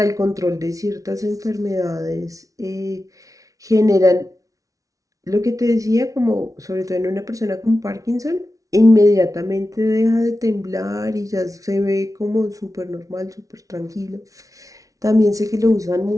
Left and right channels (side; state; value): left; late; 0.17 ms